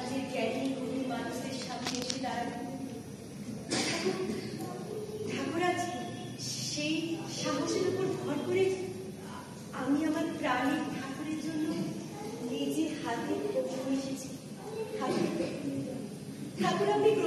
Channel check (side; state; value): both; identical; correlation 1.00